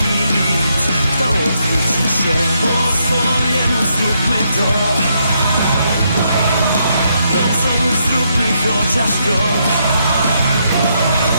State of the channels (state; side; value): inverted; both; correlation -0.77